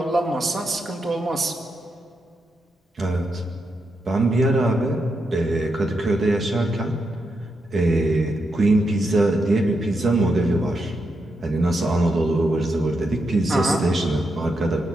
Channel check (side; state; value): both; normal; correlation 0.84